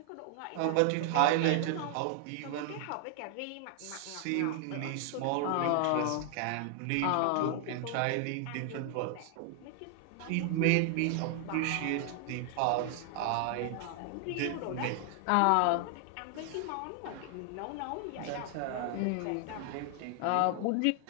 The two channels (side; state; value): both; different; correlation 0.00